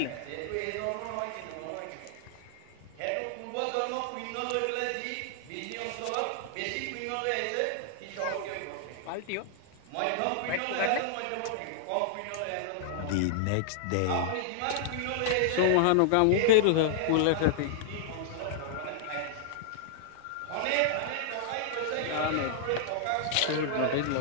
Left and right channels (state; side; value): different; both; correlation -0.01